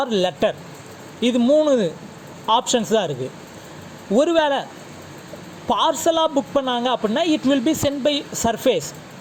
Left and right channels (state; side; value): identical; both; correlation 1.00